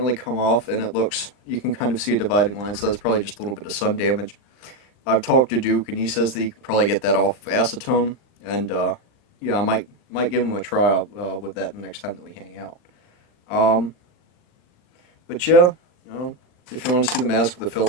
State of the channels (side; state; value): right; late; 40 ms